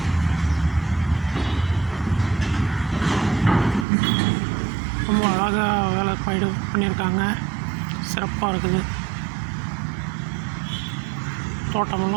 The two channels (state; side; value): drops out; left; at 3.9 s